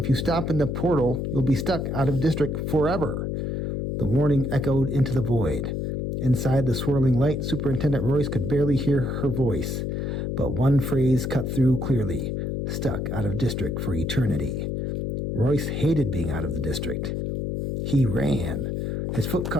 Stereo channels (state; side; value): noise; left; hum, 2 dB below the sound